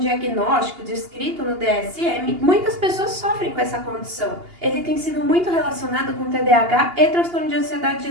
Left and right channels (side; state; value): left; late; 2.8 ms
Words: descrito no DSM, muitas pessoas sofrem com essa condição. Ele tem sido muito relacionado com TDAH e transtorno de ansiedade